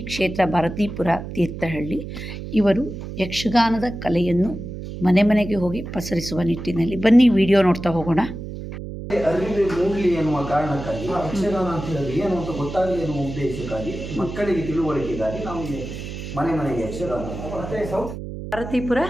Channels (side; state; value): right; noise; hum, 9 dB below the sound